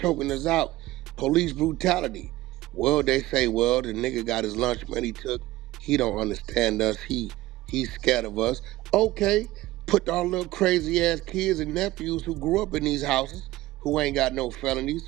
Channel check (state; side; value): quieter; left; 17.2 dB